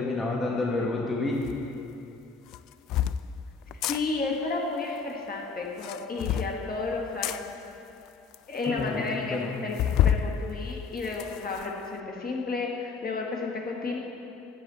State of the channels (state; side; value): quieter; right; 4.9 dB